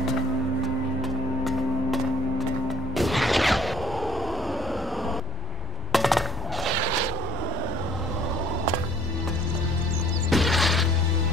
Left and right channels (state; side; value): normal; both; correlation 0.57